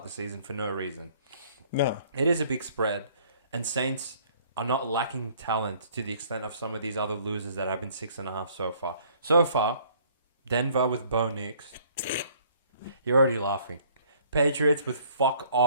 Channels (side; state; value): both; inverted; correlation -0.59